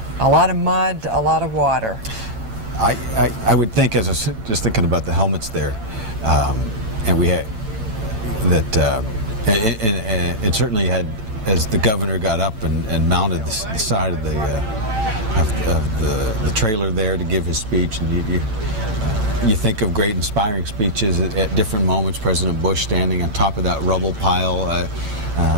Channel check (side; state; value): left; late; 9.0 ms